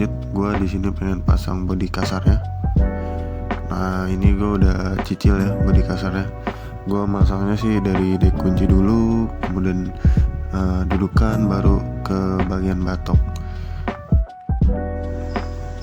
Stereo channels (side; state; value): both; identical; correlation 1.00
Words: gua di sini pengen pasang bodi kasarnya. Nah ini gue udah cicil ya bodi kasarnya. Gue masangnya sih dari dek kunci dulu, kemudian dudukan, baru ke bagian batok.